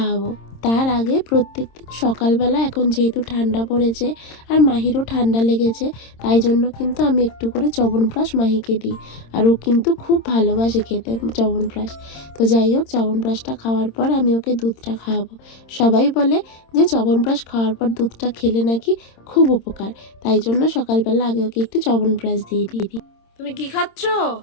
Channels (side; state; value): right; late; 26 ms